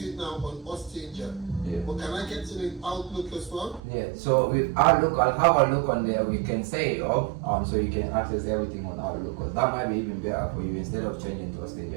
now on Ostinger. Yeah. But can I get to the Outlook as well? Yeah, so with Outlook, I'll have a look on there. We can set it up so you can access everything on Outlook, because that might be even better for you. Instead of changing to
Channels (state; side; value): drops out; left; at 3.8 s